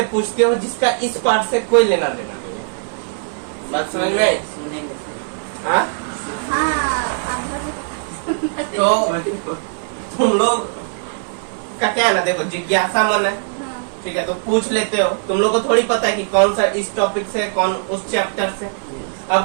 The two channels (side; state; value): left; silent; 59 dB below the other